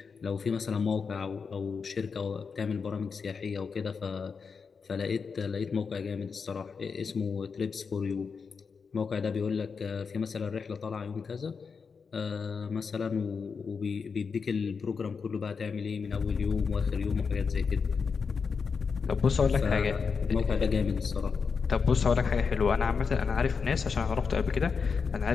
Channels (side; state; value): right; quieter; 5.5 dB